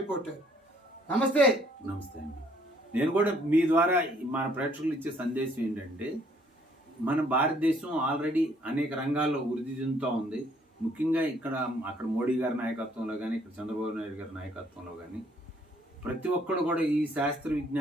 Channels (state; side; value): normal; both; correlation 0.64